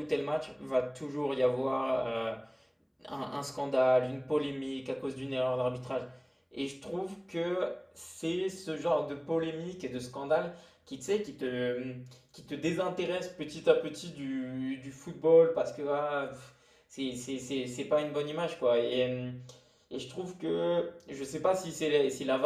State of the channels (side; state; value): both; identical; correlation 1.00